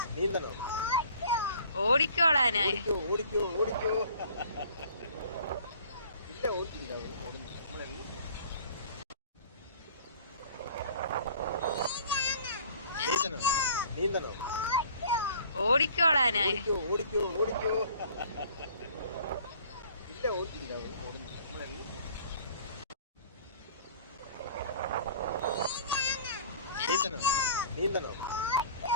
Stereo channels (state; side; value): inverted; both; correlation -0.50